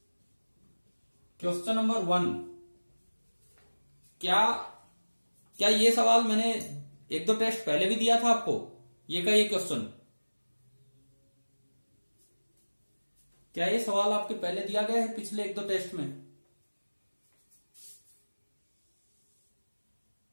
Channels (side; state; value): both; inverted; correlation -1.00